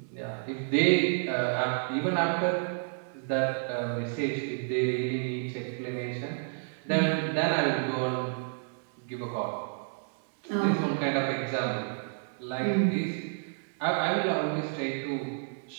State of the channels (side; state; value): left; silent; digital silence